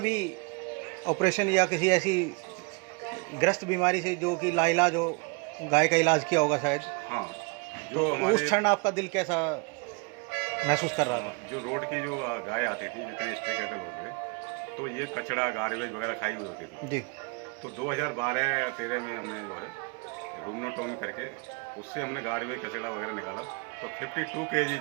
ऑपरेशन या किसी ऐसी ग्रस्त बीमारी से जो कि लाइलाज हो गाय का इलाज किया होगा शायद? हाँ। तो उस क्षण आपका दिल कैसा महसूस कर रहा था? जो रोड की जो गाय आती थी, जितने स्ट्रे कैटल होते थे, तो ये कचड़ा गार्बेज वगैरह खाई हुई होती थी जी। तो 2012-13 में हमने जो है रूमनोटोमी करके उससे हमने गार्बेज कचड़ा वगैरह निकाला तो 52 kg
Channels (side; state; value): left; quieter; 31.0 dB